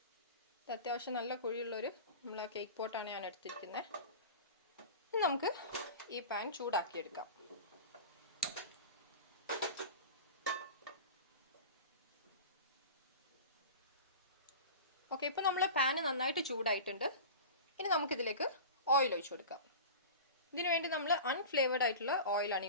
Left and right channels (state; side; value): inverted; both; correlation -0.33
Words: അത്യാവശ്യം നല്ല കുഴിയുള്ളൊരു നമ്മളെ കേക്ക് പോട്ടാണ് ഞാൻ എടുത്തിരിക്കുന്നത്. നമുക്ക് ഈ പാൻ ചൂടാക്കിയെടുക്കാം. ഓക്കെ, ഇപ്പൊ നമ്മളെ പാന് നന്നായിട്ട് ചൂടായിട്ടുണ്ട്. ഇനി നമുക്കിതിലേക്ക് ഓയിൽ ഒഴിച്ചു കൊടുക്കാം. ഇതിനു വേണ്ടി നമ്മൾ അൺഫ്ലേവേർഡ് ആയിട്ടുള്ള ഓയിലാണ്